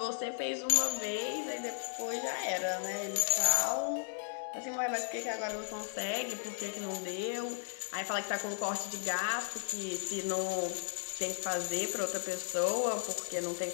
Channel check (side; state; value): right; silent; digital silence